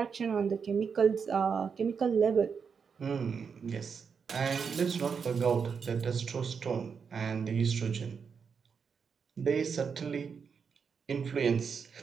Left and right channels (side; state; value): left; quieter; 6.1 dB